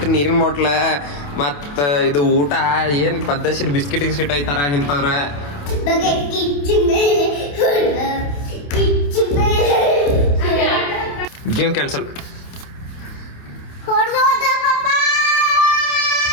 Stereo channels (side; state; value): right; late; 28 ms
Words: ನೀರಿನ ಬಾಟ್ಲ, ಮತ್ತ ಇದು ಊಟ ಏನ್ ಪದ್ದಸಿರ್ ಬಿಸ್ಕಿಟ್ ಗಿಸ್ಕಿಟ್ ಐತಾರ ಇಂಥವ್ರ. Game cancel.